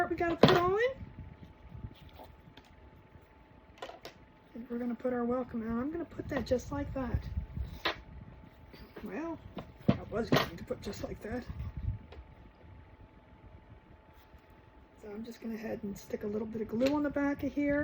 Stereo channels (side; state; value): both; identical; correlation 1.00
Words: we got to put on. And we're going to put our welcome on. I'm going to put that just like that. Well, I was going to put just like that. I'm just going to head and stick a little bit of glue on the back of